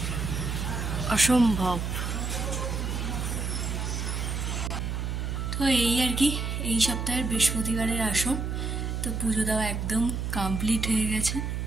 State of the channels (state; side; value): noise; right; hum, 2 dB below the sound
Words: অসম্ভব। তো এই আর কি এই সপ্তাহের বৃহস্পতিবারের আসন। তো পুজো দেওয়া একদম কমপ্লিট হয়ে গেছে।